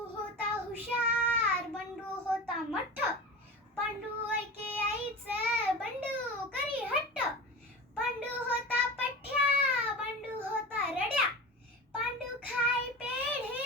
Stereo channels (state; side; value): normal; both; correlation 0.30